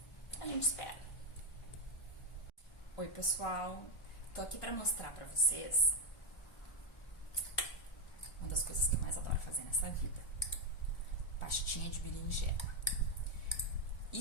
gente espera. Oi, pessoal! Tô aqui pra mostrar pra vocês uma das coisas que eu mais adoro fazer nessa vida. Pastinha de berinjela.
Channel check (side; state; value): right; late; 1.4 ms